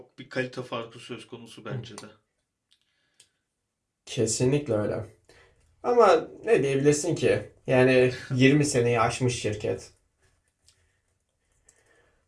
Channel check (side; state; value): both; identical; correlation 1.00